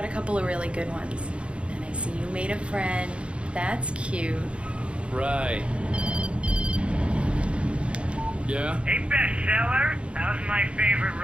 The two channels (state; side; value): late; left; 0.059 ms